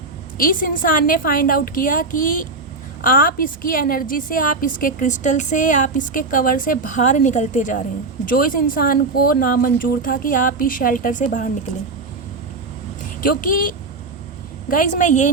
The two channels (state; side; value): quieter; left; 3.7 dB